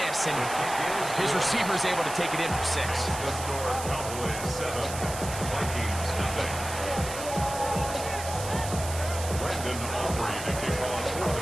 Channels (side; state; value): right; noise; hiss, 9 dB below the sound